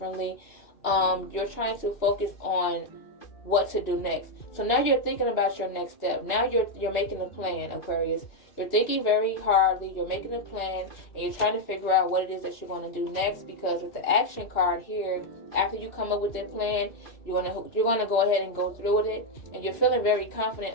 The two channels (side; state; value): right; late; 2.8 ms